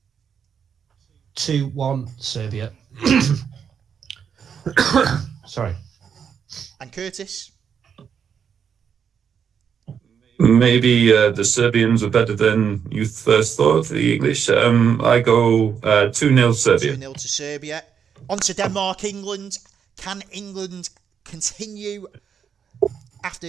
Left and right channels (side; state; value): left; quieter; 7.4 dB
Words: 2-1 Serbia. Sorry. And Curtis? Maybe the Serbians are better than you first thought, the English. I go 2-0 Serbia. 2-0 to Serbia. On to Denmark, England. Can England continue